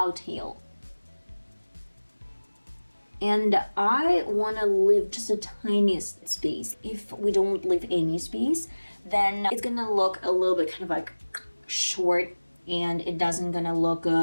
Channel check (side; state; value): both; inverted; correlation -1.00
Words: tail. And I want to leave just the tiniest space. If we don't leave any space, then it's gonna look a little bit kind of like short, and it doesn't gonna look